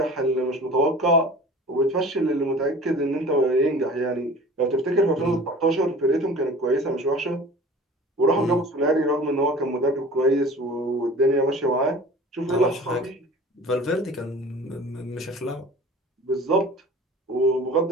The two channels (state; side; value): normal; both; correlation 0.42